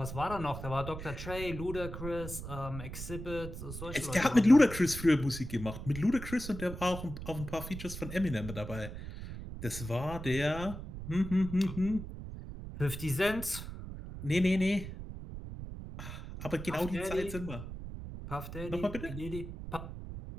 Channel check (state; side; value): noise; right; rumble, 9 dB below the sound